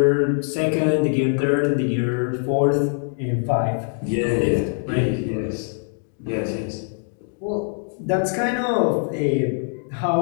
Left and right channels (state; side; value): silent; right; 59 dB below the other